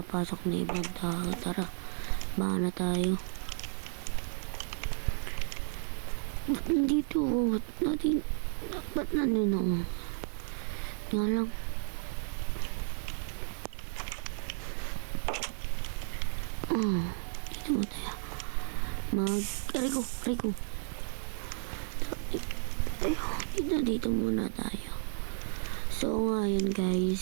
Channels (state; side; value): silent; left; 56 dB below the other